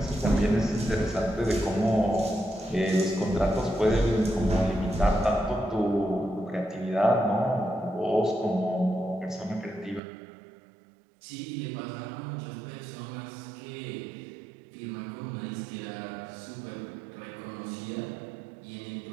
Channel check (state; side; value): drops out; left; at 10.0 s